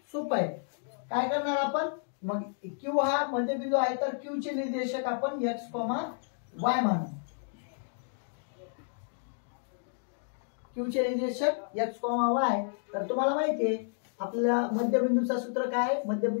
सोपं आहे. काय करणार आपण, मग Q हा मध्यबिंदू आहे तर Q चे निर्देशक आपण x, y मानू. Q चे निर्देशक x, y. तर तुम्हाला माहिती आहे आपल्याला मध्यबिंदूचं सूत्र काय आहे,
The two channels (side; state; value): right; silent; digital silence